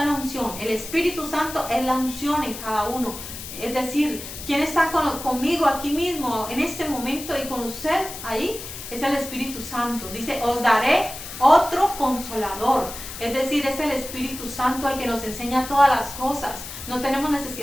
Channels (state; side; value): noise; left; hiss, 10 dB below the sound